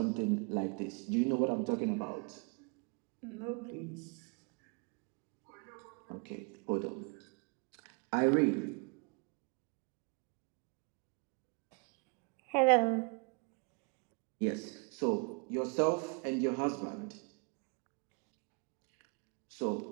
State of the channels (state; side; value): quieter; left; 33.5 dB